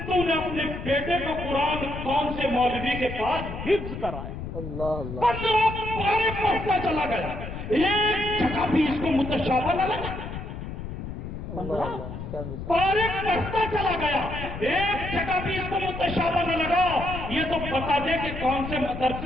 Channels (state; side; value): noise; left; rumble, 8 dB below the sound